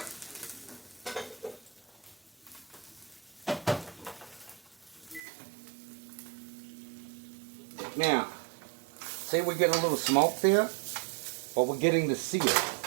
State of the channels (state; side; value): drops out; left; at 5.2 s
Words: Now, say we're getting a little smoke there, but we're getting the sear.